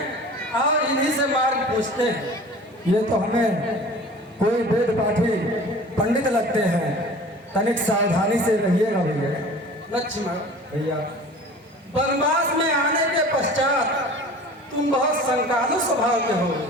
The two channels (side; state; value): both; normal; correlation 0.42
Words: और इन्हीं से मार्ग पूछते हैं। ये तो हमें कोई वेद पाठी पंडित लगते हैं, तनिक सावधानी से रहिएगा भैया। लक्ष्मण भैया, वनवास में आने के पश्चात तुम बहुत शंकालु स्वभाव के हो।